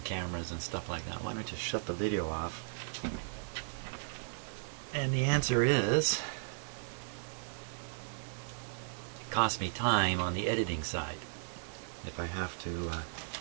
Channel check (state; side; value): silent; left; 54 dB below the other